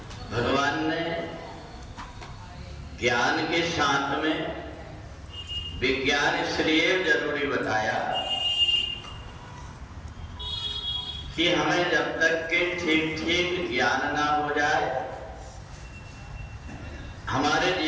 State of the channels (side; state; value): both; identical; correlation 1.00